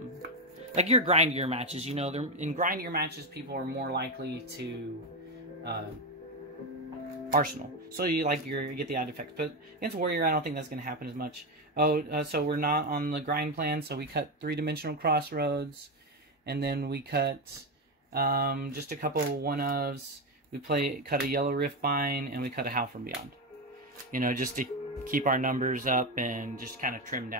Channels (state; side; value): normal; both; correlation 0.11